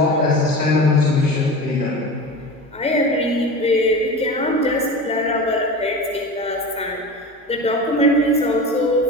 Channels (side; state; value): both; normal; correlation 0.31